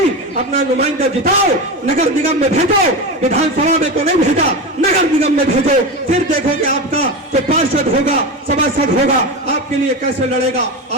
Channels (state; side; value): normal; both; correlation 0.21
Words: اپنا نمائندہ جتاؤ, نگر نگم میں بھیجو, ودھان سبھا میں تو نہیں بھیجا, نگر نگم میں بھیجو. پھر دیکھو کہ آپ کا جو پارشد ہوگا, سبھاسد ہوگا, آپ کے لیے کیسے لڑے گا,